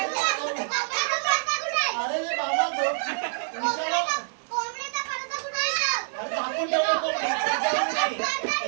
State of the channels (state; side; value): silent; left; 61 dB below the other